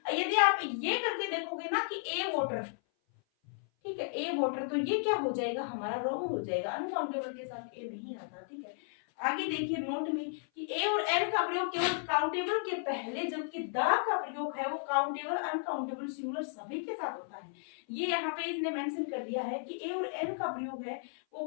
यदि आप ये करके देखोगे ना कि ए वाटर, ठीक है, ए वाटर, तो ये क्या हो जाएगा? हमारा रॉन्ग हो जाएगा, अनकाउंटेबल के साथ ए नहीं आता। ठीक है, आगे देखिए नोट में कि ए और एन का प्रयोग केवल काउंटेबल के पहले, जबकि दा का प्रयोग है वो काउंटेबल, अनकाउंटेबल, सिंगुलर सभी के साथ होता है। ये यहाँ पे इसने मेंशन कर दिया है कि ए और एन का प्रयोग है वो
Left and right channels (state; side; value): silent; right; 55 dB below the other